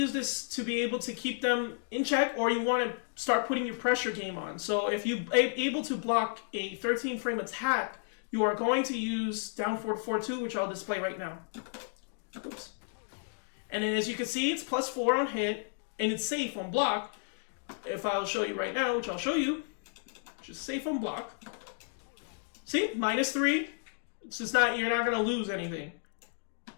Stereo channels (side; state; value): right; silent; digital silence